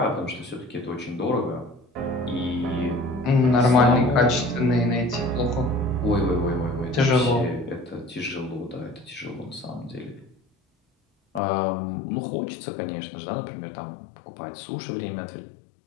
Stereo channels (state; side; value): drops out; right; at 11.4 s